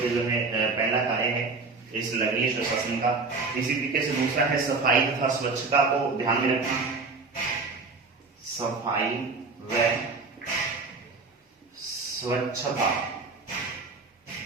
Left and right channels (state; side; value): quieter; left; 4.1 dB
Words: पे जो है पहला कार्य है इस नगरीय सुशासन का। इसी तरीके से दूसरा है सफाई तथा स्वच्छता को ध्यान में रखना, सफाई व स्वच्छता।